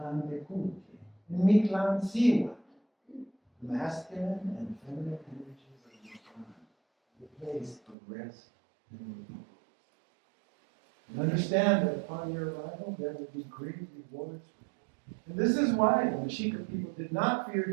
Bekuti, and Mitlan Siwa, the masculine and feminine energies of Mitlan, the place of rest and repose. And understand that upon your arrival, there will be great rewards for you. And this is why the Mexica people did not fear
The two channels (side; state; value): left; drops out; at 8.0 s